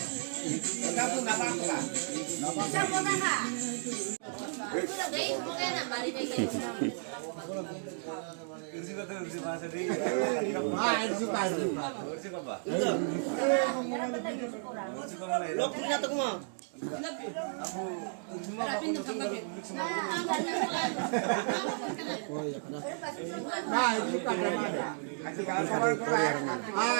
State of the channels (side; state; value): left; silent; digital silence